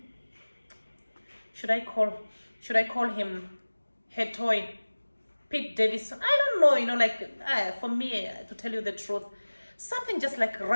should I call, should I call him her toy, Pete Davidson? I don't know, for me, to tell you the truth, something just like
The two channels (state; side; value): inverted; both; correlation -1.00